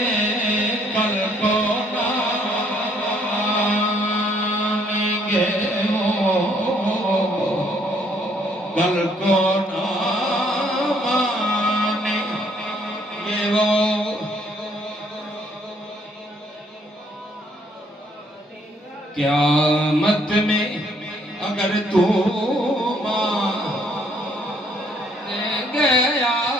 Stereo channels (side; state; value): both; normal; correlation 0.66